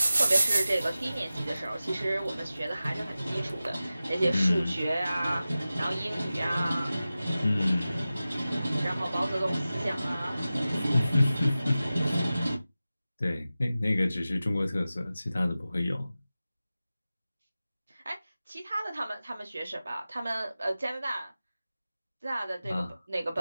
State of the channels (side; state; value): both; inverted; correlation -0.95